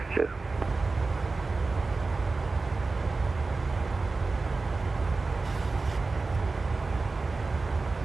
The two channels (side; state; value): left; quieter; 3.8 dB